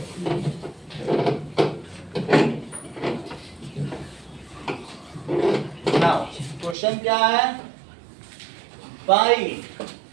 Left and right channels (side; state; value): left; drops out; at 6.8 s